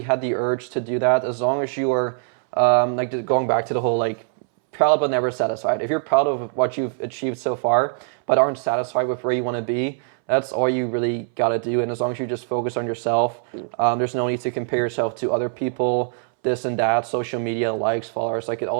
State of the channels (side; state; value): left; silent; 63 dB below the other